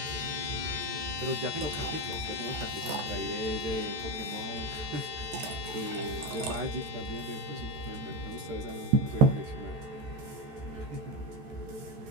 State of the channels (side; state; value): left; late; 13 ms